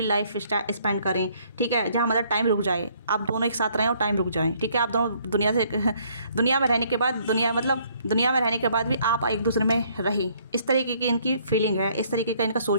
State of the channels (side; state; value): both; inverted; correlation -0.64